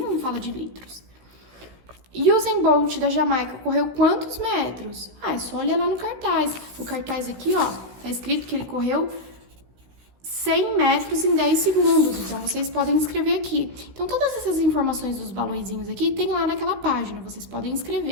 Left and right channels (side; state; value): left; late; 16 ms